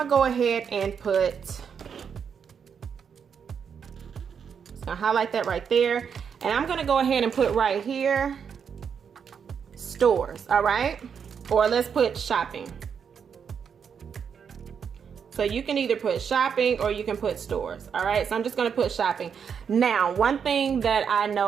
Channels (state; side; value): quieter; left; 7.0 dB